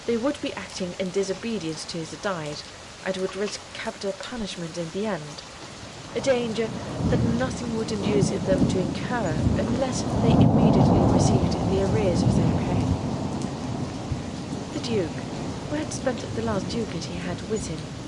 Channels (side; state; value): both; identical; correlation 1.00